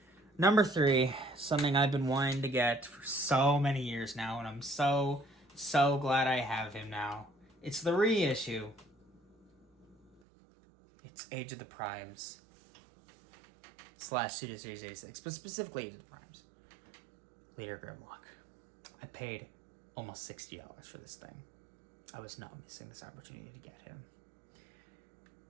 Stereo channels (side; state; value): left; drops out; at 10.2 s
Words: Number 3, something I've been wanting to get for so many years now, and I'm so glad I have him now. It's the reissue. It's Age of the Primes / Studio Series 86, but specifically Age of the Primes. Leader Grimlock. I paid almost $60 for this thing. I was not missing this opportunity to get him.